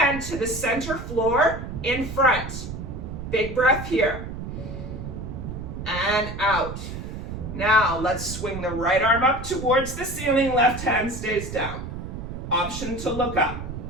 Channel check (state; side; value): noise; right; rumble, 8 dB below the sound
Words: to the center floor in front. Big breath here. And out. Now, let's swing the right arm up towards the ceiling, left hand stays down. Option to look up.